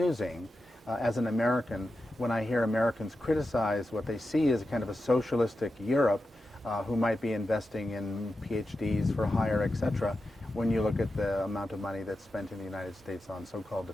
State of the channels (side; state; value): both; normal; correlation 0.90